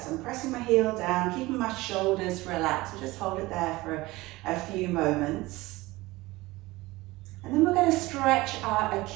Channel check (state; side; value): quieter; left; 20.2 dB